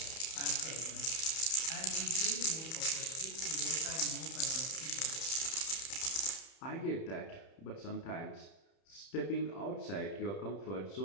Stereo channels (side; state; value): right; late; 31 ms